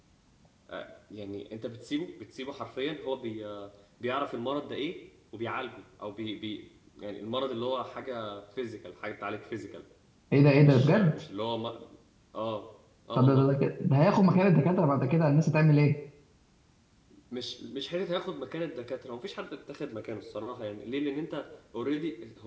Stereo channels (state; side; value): identical; both; correlation 1.00